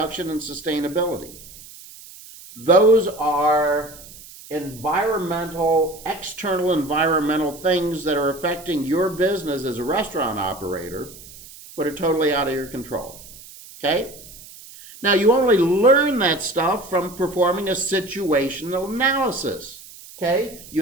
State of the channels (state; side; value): noise; right; hiss, 18 dB below the sound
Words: and sustainability. Those are external environmental things that are affecting your business as a restaurant operator, but are totally out of your control. Okay? Now, you only learn that stuff from performing a situational analysis. Okay?